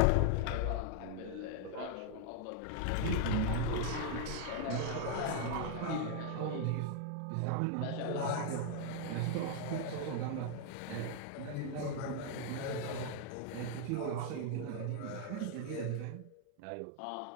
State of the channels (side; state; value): both; different; correlation 0.00